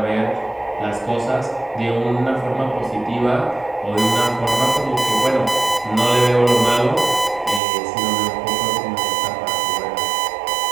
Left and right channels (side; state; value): left; drops out; at 7.6 s